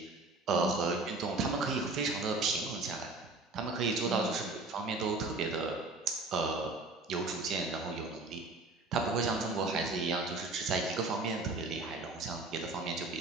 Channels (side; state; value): left; quieter; 3.3 dB